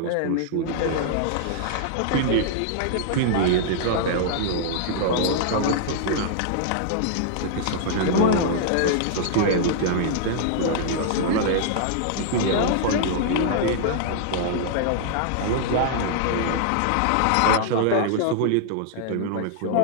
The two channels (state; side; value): different; both; correlation -0.01